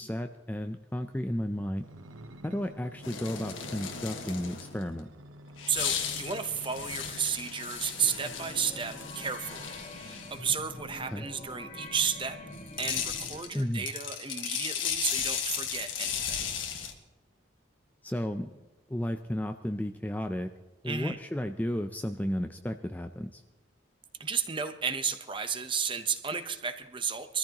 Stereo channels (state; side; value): normal; both; correlation 0.33